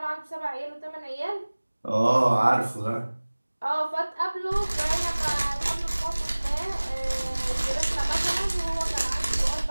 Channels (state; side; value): inverted; both; correlation -1.00